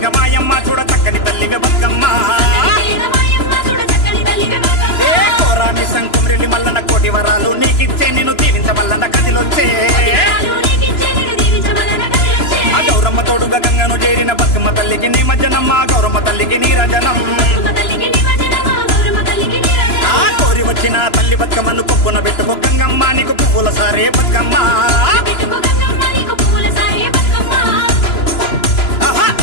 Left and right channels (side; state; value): right; late; 3.0 ms